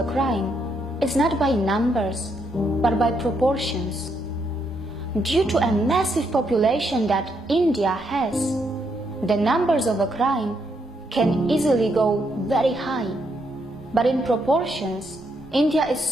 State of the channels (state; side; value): normal; both; correlation 0.77